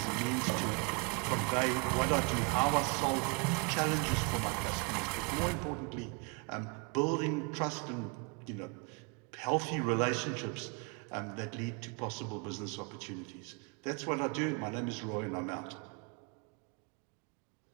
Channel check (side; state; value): left; quieter; 31.2 dB